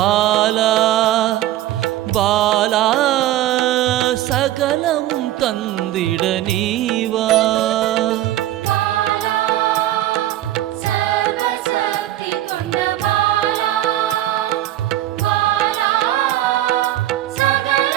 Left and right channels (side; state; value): left; quieter; 13.9 dB